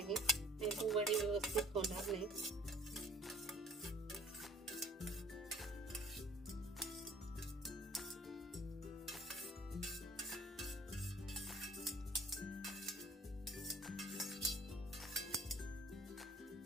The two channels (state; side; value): normal; both; correlation 0.54